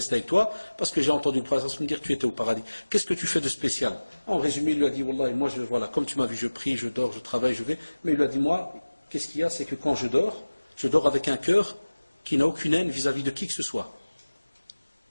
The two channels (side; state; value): both; inverted; correlation -1.00